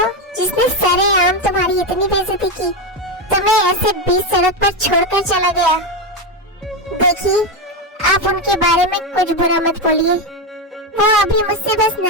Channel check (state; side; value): normal; both; correlation 0.11